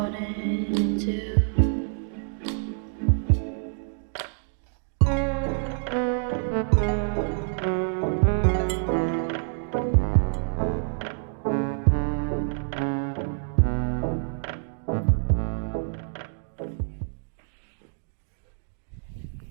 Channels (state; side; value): silent; left; digital silence